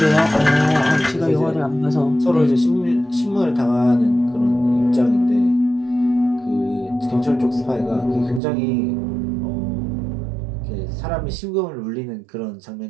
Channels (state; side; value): drops out; left; at 8.4 s